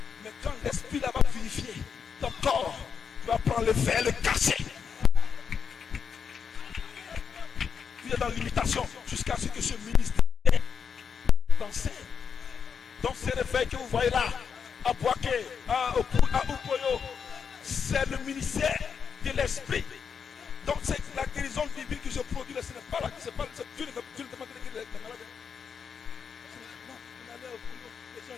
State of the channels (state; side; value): quieter; right; 6.6 dB